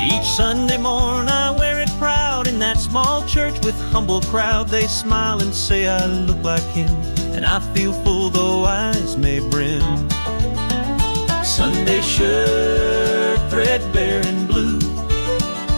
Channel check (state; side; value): inverted; both; correlation -1.00